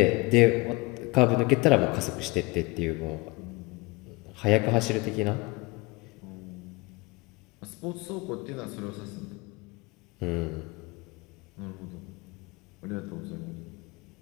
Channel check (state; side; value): quieter; right; 24.6 dB